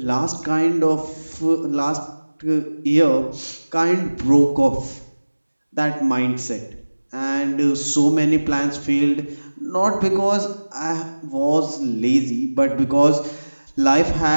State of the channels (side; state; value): both; inverted; correlation -1.00